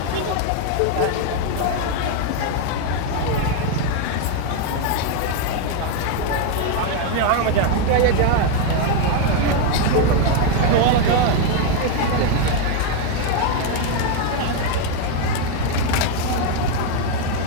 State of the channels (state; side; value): different; both; correlation 0.01